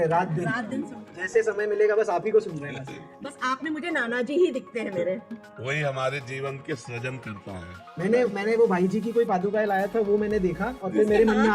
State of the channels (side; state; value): both; identical; correlation 1.00